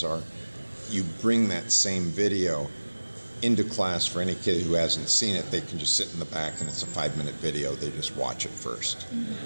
are you bring that same video into class. For any kid who hasn't seen it, they can just sit in the back, and it's a 5-minute video. They just watch it first,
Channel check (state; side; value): inverted; both; correlation -1.00